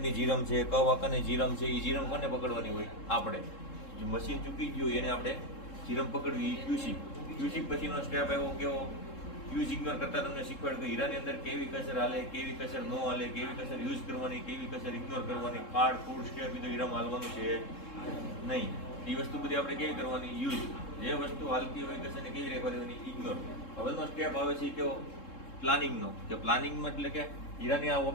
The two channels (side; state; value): right; late; 3.7 ms